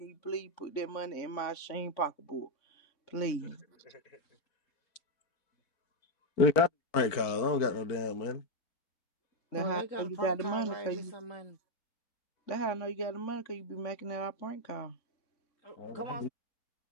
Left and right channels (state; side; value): late; right; 4.4 ms